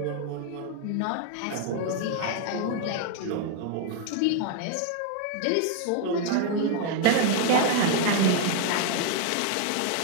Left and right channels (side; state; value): both; different; correlation 0.00